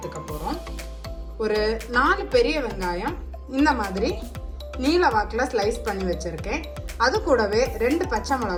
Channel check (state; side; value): identical; both; correlation 1.00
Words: போறோம். ஒரு 4 பெரிய வெங்காயம் இந்த மாதிரி நீல வாக்கில் ஸ்லைஸ் பண்ணி வச்சிருக்கேன். அது கூடவே 2 பச்சை